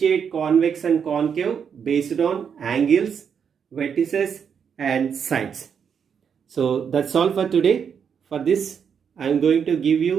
convex and concave based on angles, vertices and sides. So that's all for today. For this I am going to give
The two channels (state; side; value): quieter; left; 7.2 dB